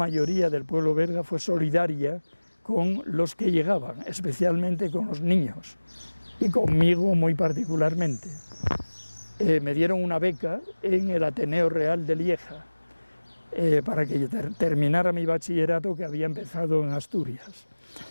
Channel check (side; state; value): both; inverted; correlation -1.00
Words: del pueblo belga fue solidaria con los que llegaban, especialmente con los niños, y conmigo muy particularmente. Me dieron una beca en el Ateneo Real de Lieja para que terminara mi bachillerato que había empezado en Asturias.